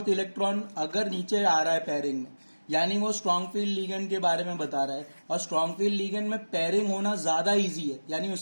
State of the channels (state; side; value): inverted; both; correlation -1.00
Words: इलेक्ट्रॉन अगर नीचे आ रहा है पेयरिंग में, यानी वो स्ट्रॉन्ग फील्ड लिगेंड के बारे में बता रहा है, और स्ट्रॉन्ग फील्ड लिगेंड में पेयरिंग होना ज्यादा इजी है, यानी